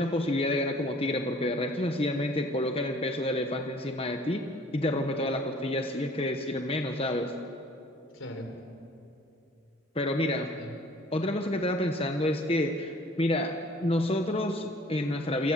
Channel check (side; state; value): both; normal; correlation 0.53